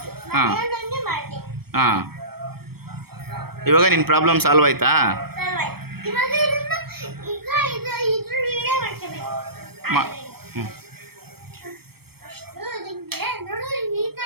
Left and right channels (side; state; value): left; late; 0.95 ms